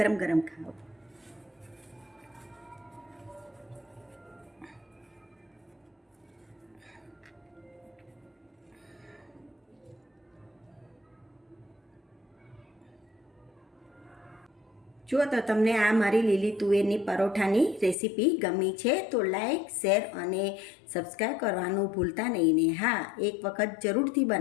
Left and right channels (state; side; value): drops out; right; at 17.9 s